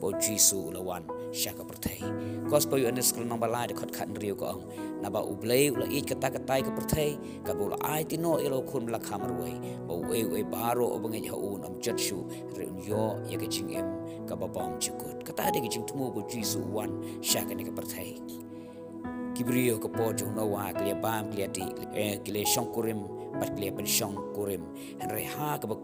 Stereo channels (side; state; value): both; identical; correlation 1.00